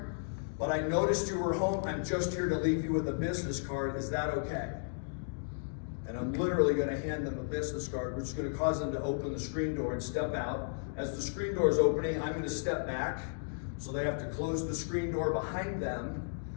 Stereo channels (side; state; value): right; silent; digital silence